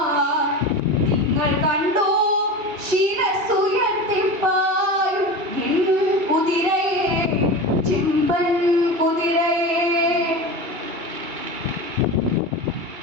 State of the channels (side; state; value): left; late; 2.8 ms